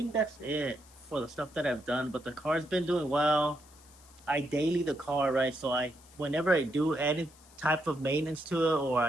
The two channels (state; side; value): noise; left; hiss, 25 dB below the sound